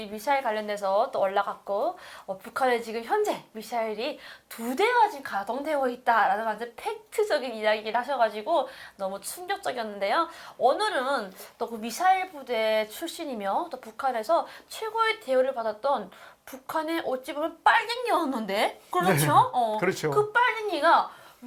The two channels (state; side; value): identical; both; correlation 1.00